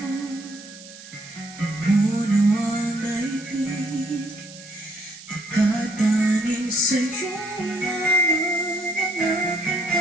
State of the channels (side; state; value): right; noise; hiss, 17 dB below the sound